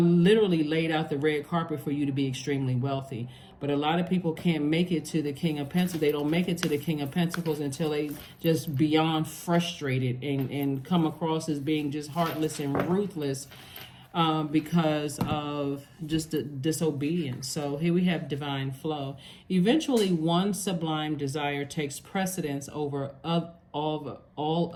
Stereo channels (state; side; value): identical; both; correlation 1.00